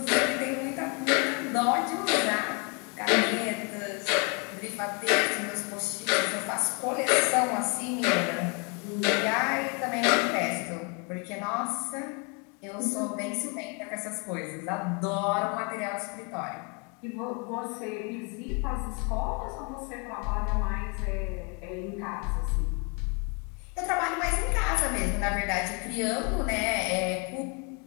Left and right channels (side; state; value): right; quieter; 33.9 dB